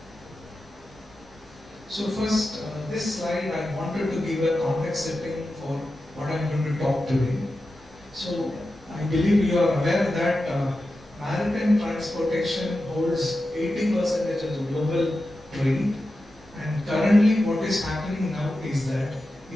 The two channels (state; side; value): normal; both; correlation 0.91